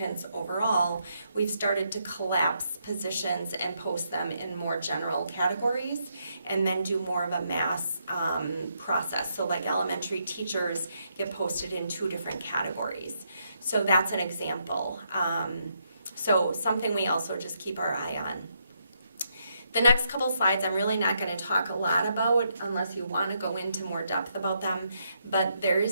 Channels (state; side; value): inverted; both; correlation -0.77